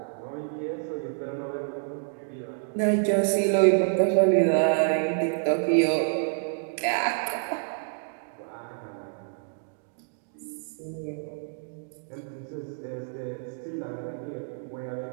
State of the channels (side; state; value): left; silent; digital silence